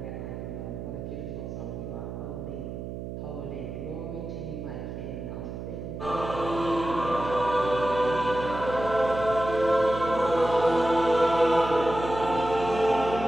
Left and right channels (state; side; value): noise; right; hum, 8 dB below the sound